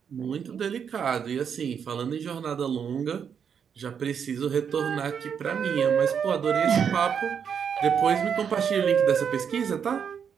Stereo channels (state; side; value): quieter; left; 7.4 dB